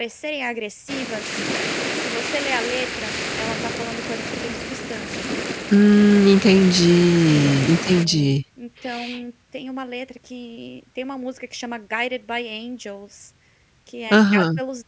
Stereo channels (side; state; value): both; identical; correlation 1.00